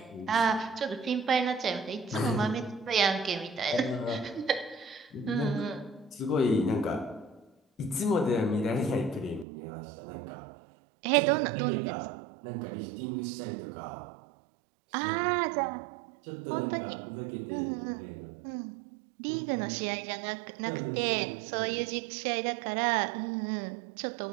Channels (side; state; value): left; drops out; at 9.5 s